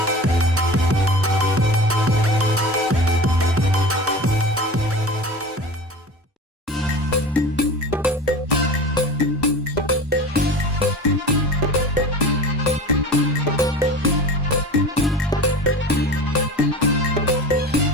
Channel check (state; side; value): normal; both; correlation 0.34